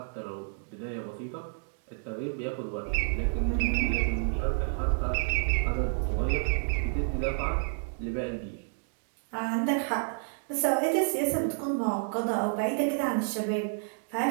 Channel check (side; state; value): left; silent; digital silence